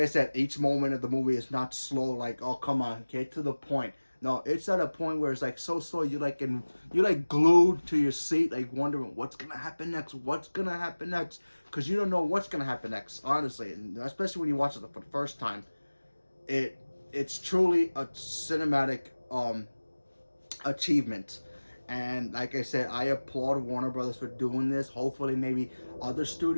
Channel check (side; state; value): both; inverted; correlation -1.00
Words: said, each moment of the movie is not slow. Like, oh, come on, get to the point. No, it's at a point where it's like so slow. You're like glued to your seat, like wondering what's gonna happen next. What's gonna happen next? Because you don't know what's gonna happen next. Honestly, and especially when you watch it for the first time, it's truly a cinematic achievement. And like I said, I applaud Warner Brothers for doing this. Hopefully, maybe other